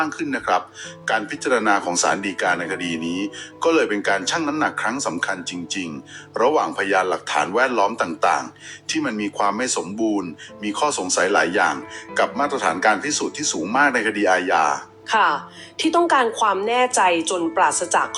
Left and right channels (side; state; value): both; identical; correlation 1.00